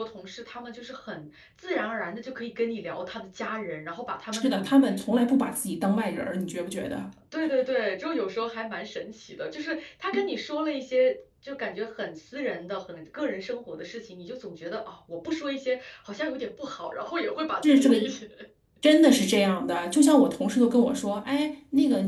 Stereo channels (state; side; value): identical; both; correlation 1.00